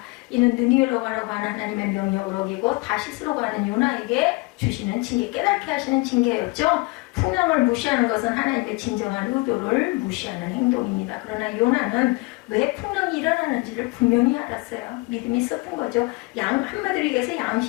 이는 느니웨로 가라고 하는 하나님의 명령을 어기고 다시스로 가는 요나에게 주시는 징계, 깨닫게 하시는 징계였죠. 풍랑을 무시하는 것은 하나님의 진정한 의도를 무시하는 행동입니다. 그러나 요나는 왜 풍랑이 일어나는지를 분명히 알았어요. 믿음이 있었던 거죠. 한마디로 얘기해서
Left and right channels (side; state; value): right; quieter; 25.0 dB